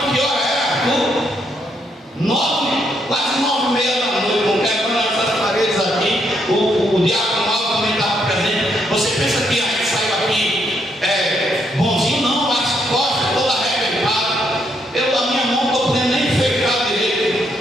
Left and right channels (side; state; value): both; normal; correlation 0.76